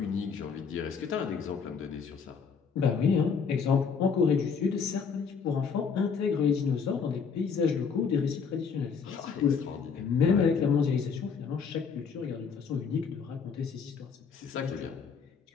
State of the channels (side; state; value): right; quieter; 5.9 dB